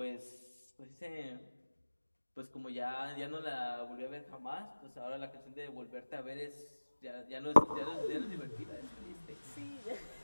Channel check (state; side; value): inverted; both; correlation -1.00